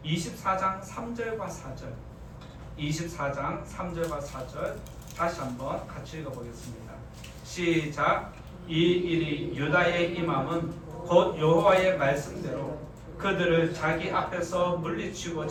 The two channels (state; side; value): identical; both; correlation 1.00